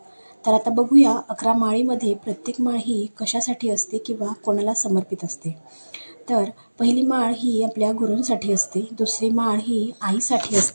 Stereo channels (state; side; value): inverted; both; correlation -1.00